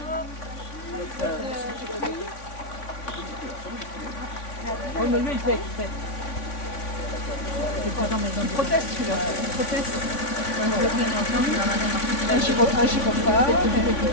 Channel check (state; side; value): late; right; 3.5 ms